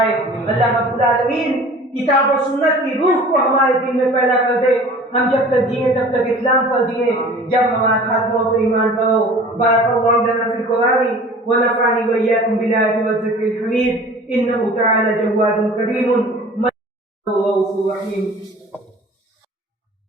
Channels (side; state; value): both; normal; correlation 0.44